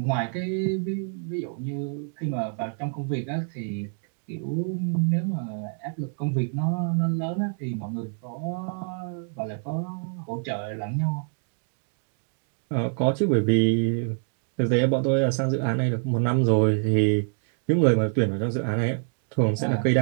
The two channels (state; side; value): silent; left; 61 dB below the other